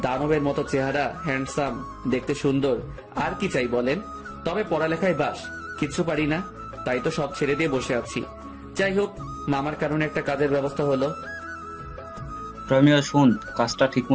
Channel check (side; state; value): both; identical; correlation 1.00